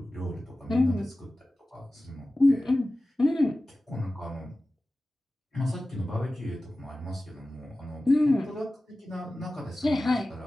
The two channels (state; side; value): normal; both; correlation 0.96